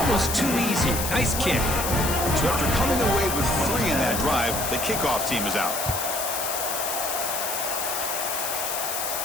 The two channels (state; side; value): noise; left; hiss, 3 dB below the sound